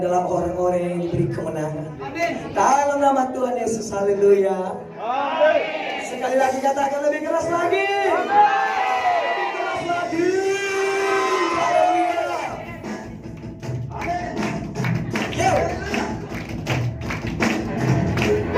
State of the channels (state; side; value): identical; both; correlation 1.00